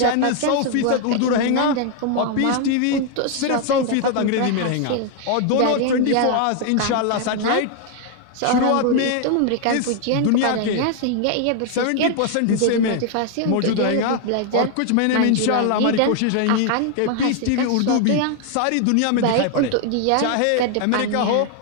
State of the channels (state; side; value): different; both; correlation 0.00